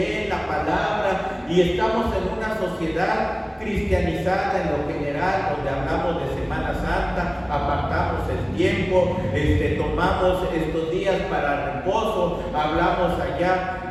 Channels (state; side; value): identical; both; correlation 1.00